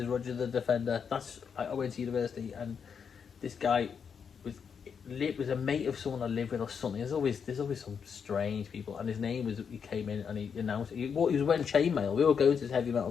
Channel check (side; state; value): right; quieter; 6.7 dB